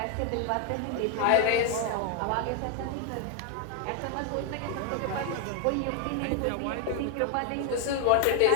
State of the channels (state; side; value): different; both; correlation 0.00